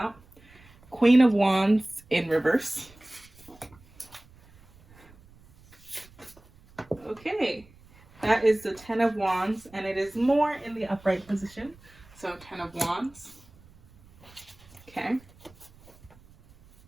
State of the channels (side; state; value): right; noise; rumble, 26 dB below the sound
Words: Queen of Wands in reverse. Okay, that is the 10 of Wands, and it is more in the upright position. So 10 of Wands. Okay.